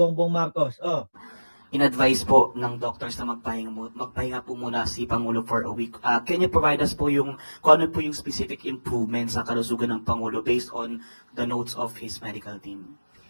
Marcos. Oh, In-advise po ng doctors na magpahinga po muna si Pangulo for a week. Can you provide us po kung ano po yung specific improvements sa kalusugan ng Pangulo based on the notes of his medical team?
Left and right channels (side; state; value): both; inverted; correlation -1.00